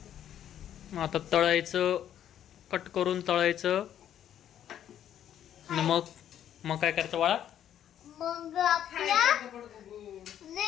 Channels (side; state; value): right; quieter; 10.4 dB